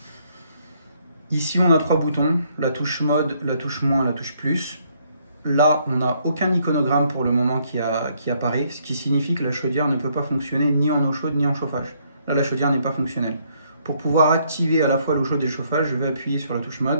Ici, on a 3 boutons, la touche mode, la touche moins, la touche plus. Là, on n'a aucun iconogramme pour le moment qui apparaît, ce qui signifie que la chaudière ne peut pas fonctionner ni en eau chaude ni en chauffage. Là, la chaudière n'est pas fonctionnelle. Pour pouvoir activer à la fois l'eau chaude et le chauffage, je vais appuyer sur la touche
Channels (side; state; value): both; inverted; correlation -0.69